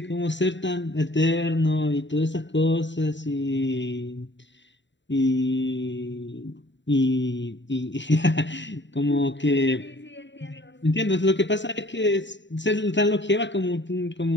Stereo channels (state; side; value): late; right; 0.53 ms